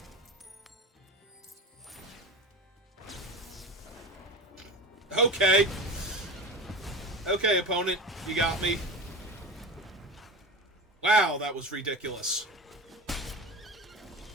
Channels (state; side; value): normal; both; correlation 0.28